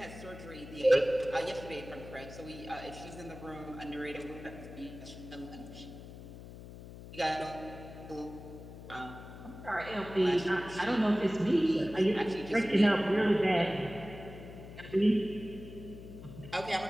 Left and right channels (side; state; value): left; noise; hum, 14 dB below the sound